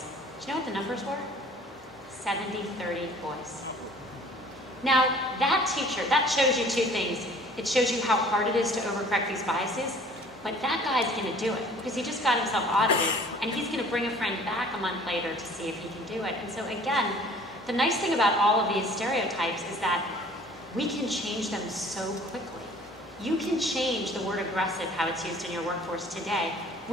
Do you know what the numbers were? 70-30 boys. Now, that teacher, that shows you two things. It shows you how hard it is to overcorrect these biases, but that guy's gonna do it because he just got himself audited and he's gonna bring a friend back a month later to see if he can do it. And so again, the nice thing about all of these stereotypes is that we can change them so quickly. You can change the word aggressive, how it's used in your workforce today.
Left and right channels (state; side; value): normal; both; correlation 0.51